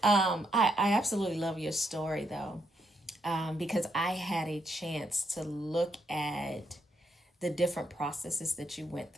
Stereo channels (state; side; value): normal; both; correlation 0.77